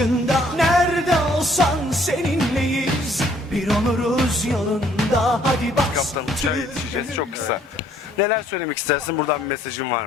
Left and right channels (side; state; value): both; normal; correlation 0.63